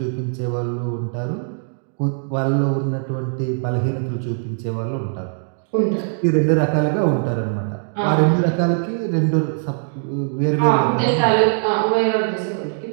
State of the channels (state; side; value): silent; left; digital silence